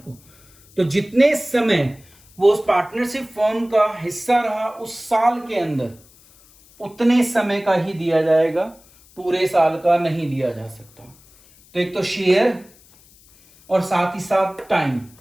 तो जितने समय वो उस पार्टनरशिप फर्म का हिस्सा रहा उस साल के अंदर, उतने समय का ही दिया जाएगा, पूरे साल का नहीं दिया जा सकता। तो एक तो शेयर और साथ ही साथ टाइम,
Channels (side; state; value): left; noise; hiss, 27 dB below the sound